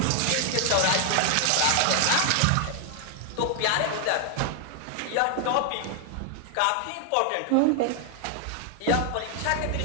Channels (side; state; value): both; different; correlation 0.00